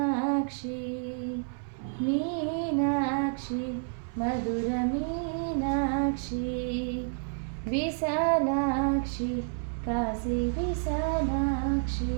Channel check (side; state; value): left; silent; 58 dB below the other